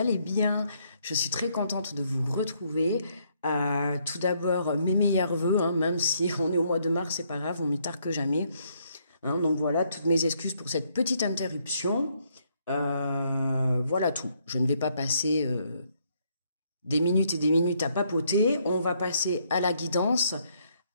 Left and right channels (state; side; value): inverted; both; correlation -0.71